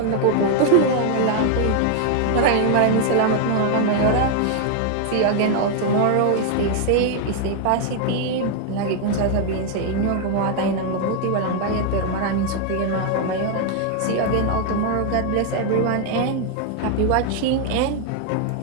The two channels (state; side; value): different; both; correlation 0.00